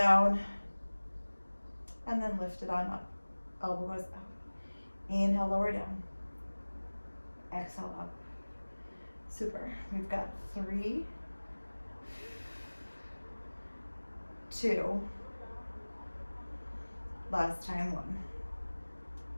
and then lift it on up. Elbow goes up. Inhale, lower down. Exhale, up. Super, we've got 3, 2, last time, 1.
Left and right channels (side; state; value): both; inverted; correlation -1.00